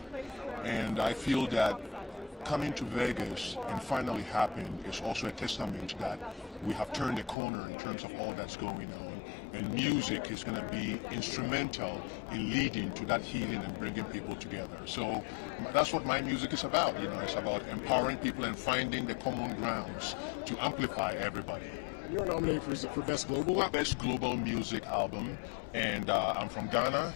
and I feel that coming to Vegas and finally happened is also a testament that we have turned the corner in terms of all that's going on, and music is going to be instrumental in leading to that healing and bringing people together. So that's what my music is about. It's about empowering people and finding the common grounds to amplify everybody. You're nominated for Best Global Album? Best Global Music Album, and I'm from Ghana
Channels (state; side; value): drops out; right; at 7.4 s